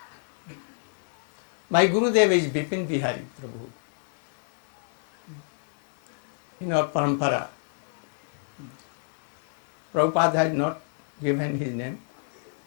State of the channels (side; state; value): right; silent; digital silence